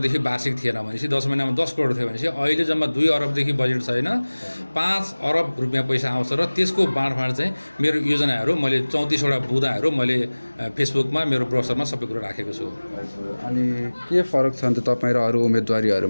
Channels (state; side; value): inverted; both; correlation -1.00